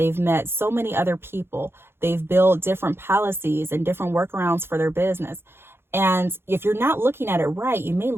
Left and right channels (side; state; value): left; late; 0.11 ms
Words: met so many other people. They've built different policies and different workarounds for their business. And if you're not looking at it right, you may